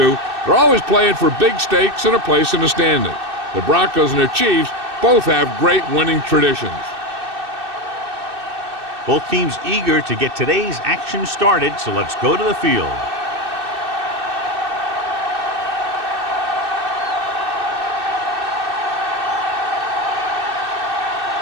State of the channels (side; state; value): left; late; 2.6 ms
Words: they're always playing for big stakes and a place in the standings. The Broncos and the Chiefs both have great winning traditions. Both teams eager to get today's action started, so let's go to the field.